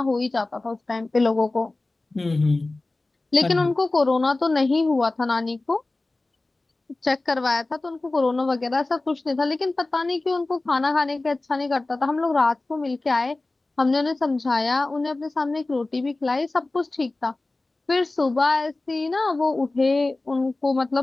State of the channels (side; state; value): right; quieter; 3.1 dB